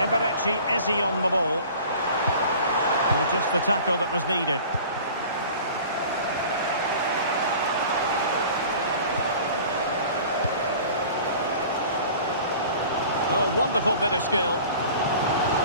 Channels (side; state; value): both; inverted; correlation -0.44